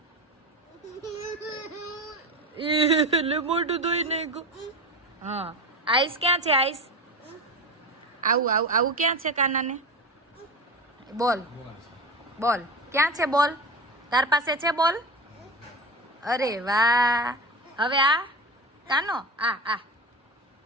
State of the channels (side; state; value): both; normal; correlation 0.26